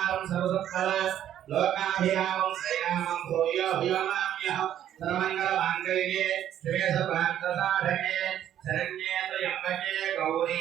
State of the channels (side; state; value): left; quieter; 10.9 dB